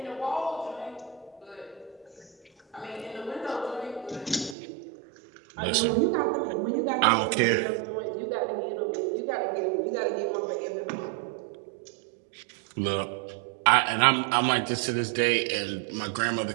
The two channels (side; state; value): left; drops out; at 4.5 s